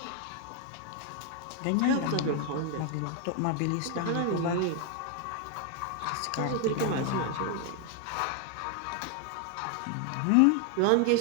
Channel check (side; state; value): both; different; correlation 0.01